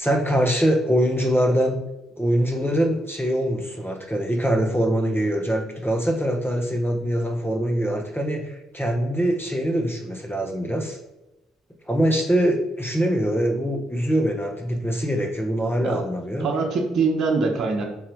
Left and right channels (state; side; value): normal; both; correlation 0.83